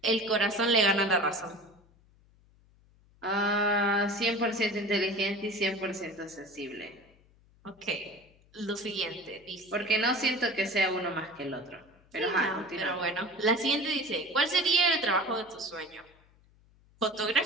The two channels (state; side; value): noise; left; hum, 30 dB below the sound